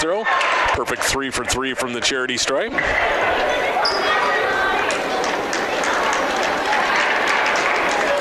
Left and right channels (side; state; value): both; identical; correlation 1.00